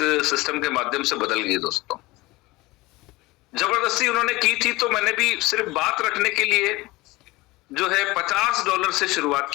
सिस्टम के माध्यम से बदल गई दोस्तों। जबरदस्ती उन्होंने की थी, तो मैंने भी सिर्फ बात रखने के लिए जो है $50 से शुरुआत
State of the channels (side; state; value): right; quieter; 21.2 dB